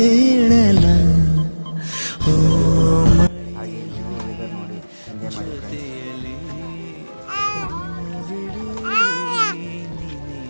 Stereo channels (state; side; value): inverted; both; correlation -1.00